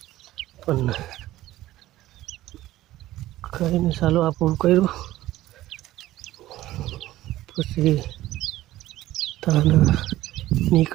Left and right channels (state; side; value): quieter; left; 15.4 dB